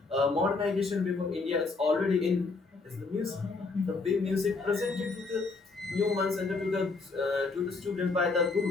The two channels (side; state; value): right; quieter; 4.0 dB